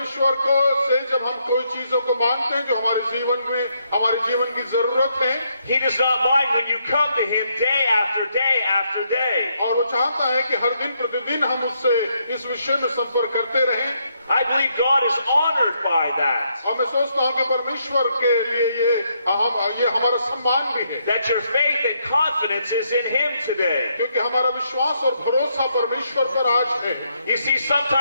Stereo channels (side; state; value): both; inverted; correlation -0.76